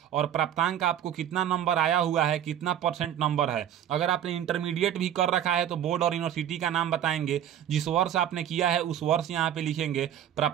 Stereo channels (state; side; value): quieter; left; 10.3 dB